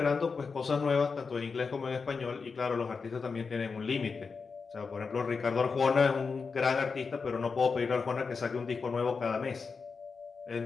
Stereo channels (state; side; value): quieter; right; 4.9 dB